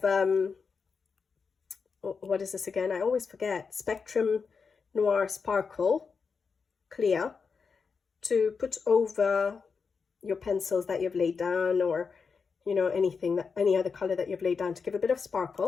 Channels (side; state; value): right; quieter; 5.4 dB